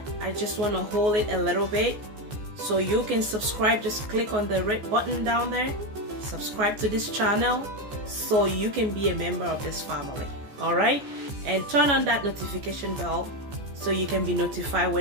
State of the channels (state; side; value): late; left; 14 ms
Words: I just want to hold it a little bit so you can subscribe. Just click on the red button down there, subscribe to this channel so you can be a member of this family. All right, and turn on that notification bell so you can be notified